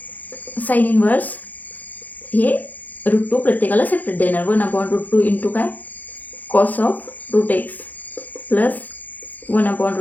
साइन इनवर्स हे रूट 2 प्रत्येकाला सेपरेट देणार. 1 अपॉन रूट 2 इंटू काय cos of root X plus 1 upon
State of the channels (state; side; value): late; right; 0.082 ms